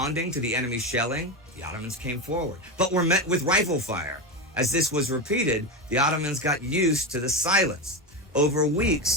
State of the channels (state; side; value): normal; both; correlation 0.16